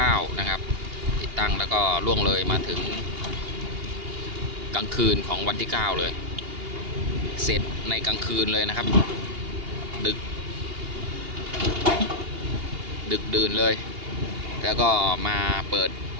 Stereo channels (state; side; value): late; left; 2.8 ms